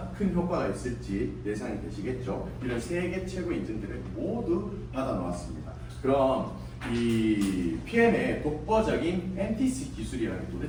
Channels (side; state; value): both; identical; correlation 1.00